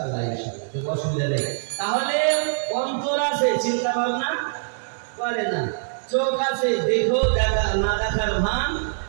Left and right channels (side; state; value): left; silent; 63 dB below the other